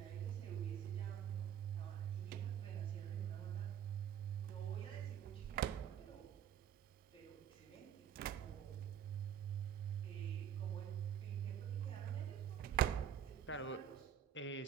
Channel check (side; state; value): left; quieter; 9.1 dB